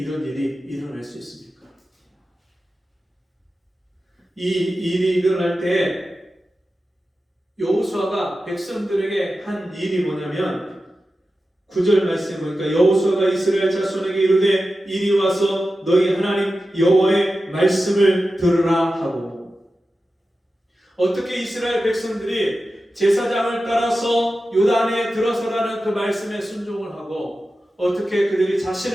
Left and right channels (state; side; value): normal; both; correlation 0.93